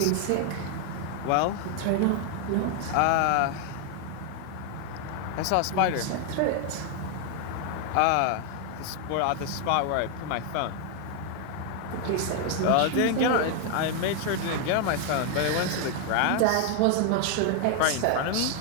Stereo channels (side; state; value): both; different; correlation 0.00